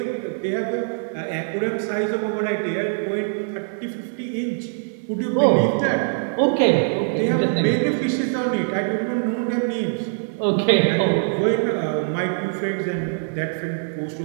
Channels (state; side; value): silent; left; digital silence